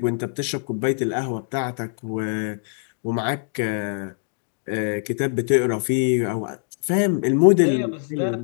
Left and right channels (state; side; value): silent; right; digital silence